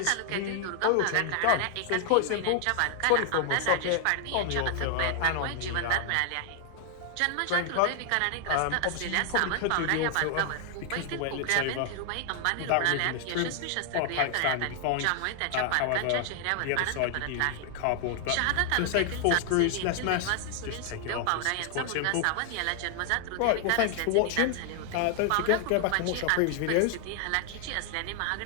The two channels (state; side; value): different; both; correlation 0.00